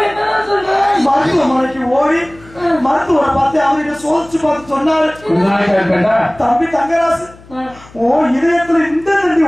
மருத்துவமனைக்கு ஓடி மருத்துவரை பார்த்து அவர்கிட்ட சோதிச்சு பார்த்து சொன்னாரு, தம்பி தங்கராசு ஓ இதயத்துல இந்த நன்றி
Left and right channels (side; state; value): left; noise; hum, 23 dB below the sound